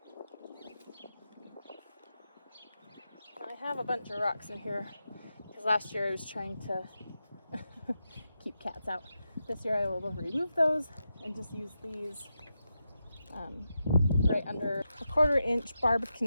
I have a bunch of rocks in here because last year I was trying to keep cats out. This year I will remove those and just use these right under a 1/4 inch barb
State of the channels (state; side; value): inverted; both; correlation -0.88